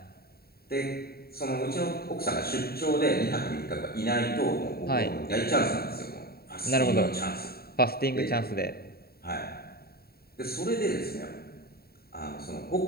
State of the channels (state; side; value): late; right; 0.45 ms